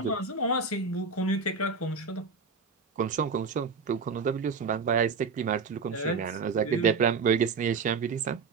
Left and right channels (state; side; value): quieter; left; 4.8 dB